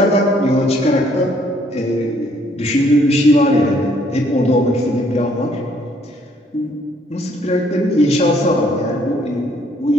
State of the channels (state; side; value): normal; both; correlation 0.65